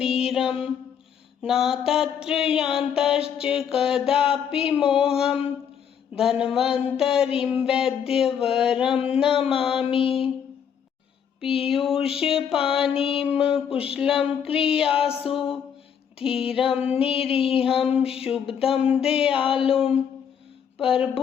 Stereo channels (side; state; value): right; quieter; 8.0 dB